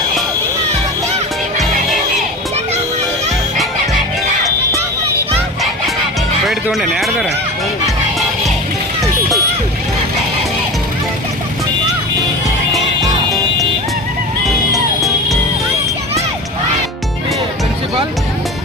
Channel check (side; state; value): both; normal; correlation 0.31